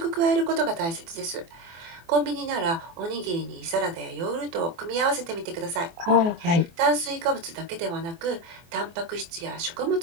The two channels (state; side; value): late; left; 24 ms